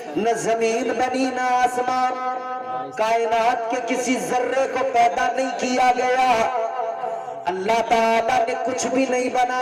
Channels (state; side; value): identical; both; correlation 1.00